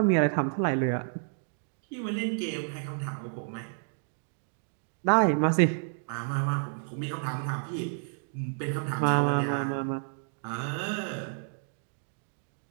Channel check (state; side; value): silent; left; digital silence